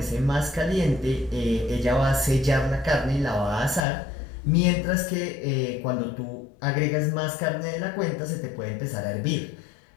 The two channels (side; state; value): right; drops out; at 3.9 s